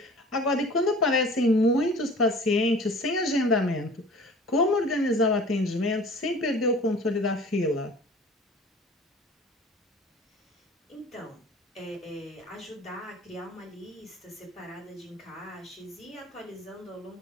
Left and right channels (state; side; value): normal; both; correlation 0.45